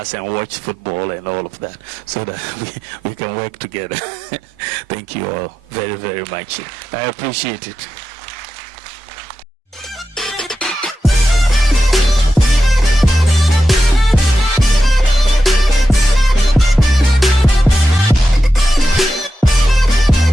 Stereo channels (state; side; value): normal; both; correlation 0.90